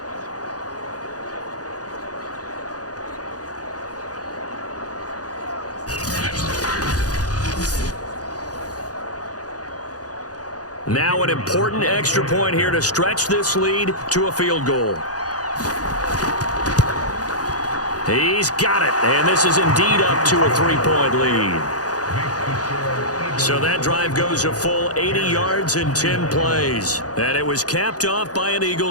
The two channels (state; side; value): late; right; 0.68 ms